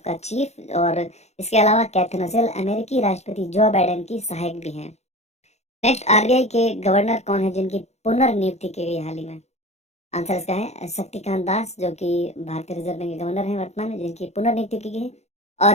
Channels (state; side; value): late; right; 0.32 ms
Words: का चीफ, और इसके अलावा कैथरीन रसेल अमेरिकी राष्ट्रपति जो बाइडेन की सहायक भी हैं। नेक्स्ट, आरबीआई के गवर्नर कौन है जिनकी पुनर्नियुक्ति की गई हाल ही में? आंसर इसका है शक्तिकांत दास, जो कि भारतीय रिजर्व बैंक के गवर्नर हैं वर्तमान में, जिनकी पुनर्नियुक्ति की गई